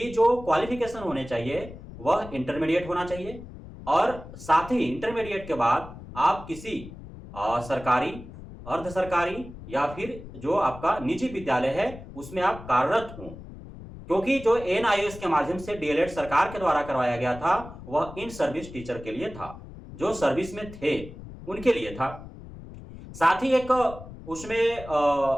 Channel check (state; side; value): noise; left; rumble, 14 dB below the sound